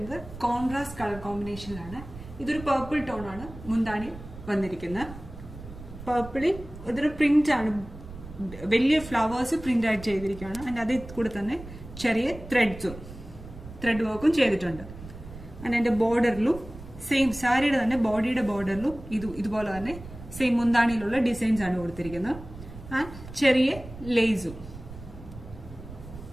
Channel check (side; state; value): right; noise; rumble, 14 dB below the sound